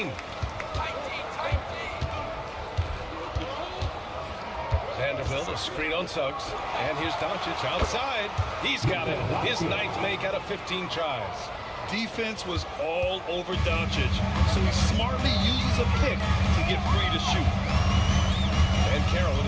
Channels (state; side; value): identical; both; correlation 1.00